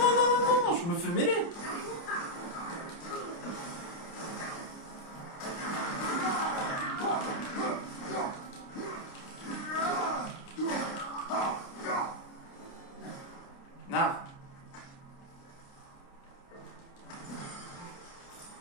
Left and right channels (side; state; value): right; late; 29 ms